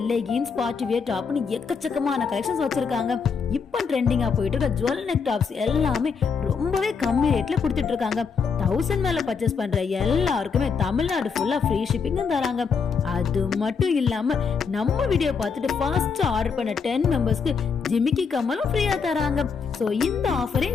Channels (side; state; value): right; quieter; 5.7 dB